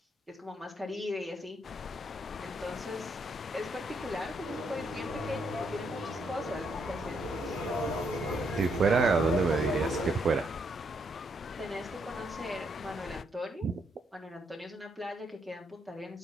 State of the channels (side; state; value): both; normal; correlation 0.75